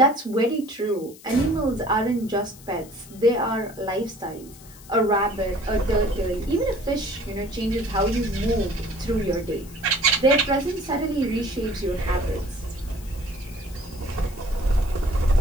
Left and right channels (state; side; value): noise; left; hiss, 21 dB below the sound